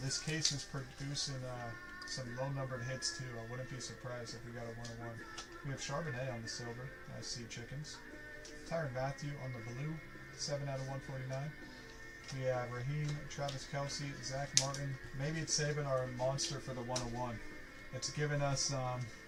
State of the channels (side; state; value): both; identical; correlation 1.00